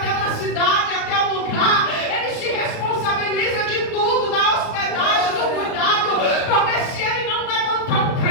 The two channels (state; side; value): late; right; 36 ms